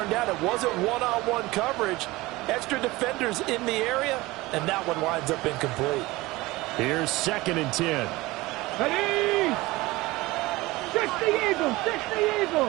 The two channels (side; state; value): left; quieter; 20.4 dB